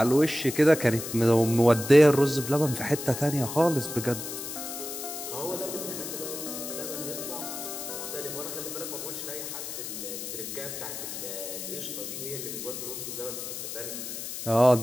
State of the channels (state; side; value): noise; left; hiss, 7 dB below the sound